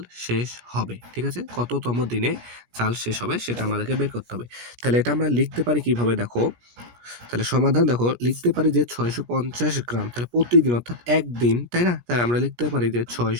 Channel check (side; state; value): left; late; 17 ms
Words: শেষ হবে? ঠিক আছে? কততম দিনে চাল শেষ হবে সেটা আমাদেরকে বের করতে হবে। তাহলে এটা আমরা লিখতে পারি কিভাবে? দেখো, তাহলে সমাধান দেখো, লিখতে পারি যে ৬৫০ গ্রাম, তাহলে প্রতিদিন অর্থাৎ একদিন, তাই না? তাহলে আমরা লিখতে পারি যে